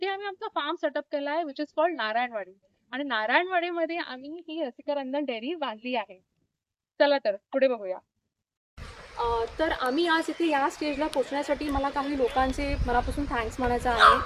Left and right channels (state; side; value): identical; both; correlation 1.00